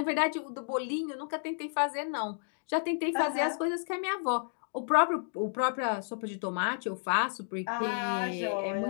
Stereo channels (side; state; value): right; silent; digital silence